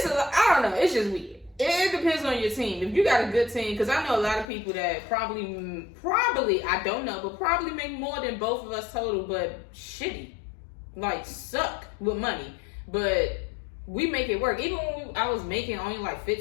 don't know, it's just weird. It depends on your team. If you got a good team, because I know a lot of people that probably I don't know, but probably make more than both of us total, but shitty, like suck with money. But we make it work. Even when I was making only like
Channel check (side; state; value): right; drops out; at 4.5 s